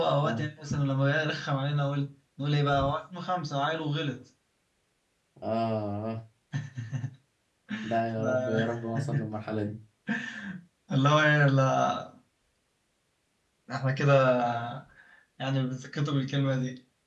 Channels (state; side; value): identical; both; correlation 1.00